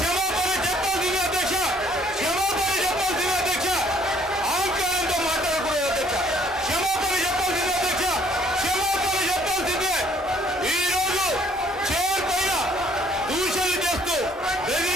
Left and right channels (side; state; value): both; normal; correlation 0.62